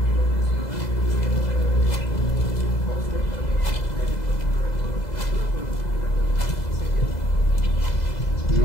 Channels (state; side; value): late; right; 2.0 ms